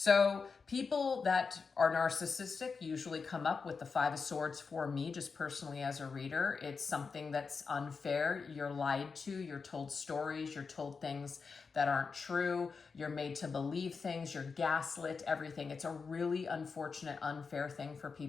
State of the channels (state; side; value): quieter; right; 5.0 dB